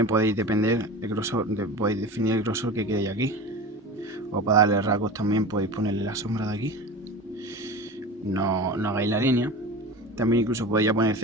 podéis depender el grosor, podéis definir el grosor que queréis aquí. O para darle rasgos también podéis ponerle la sombra de aquí. No hagáis la línea. También incluso podéis ya poner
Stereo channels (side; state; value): both; normal; correlation 0.32